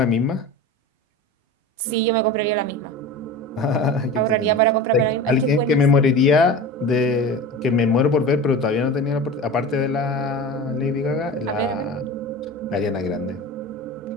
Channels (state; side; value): normal; both; correlation 0.32